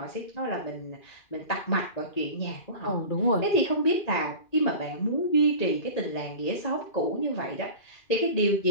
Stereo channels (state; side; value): late; right; 2.4 ms